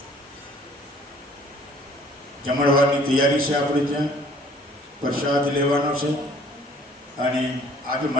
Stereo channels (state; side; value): normal; both; correlation 0.56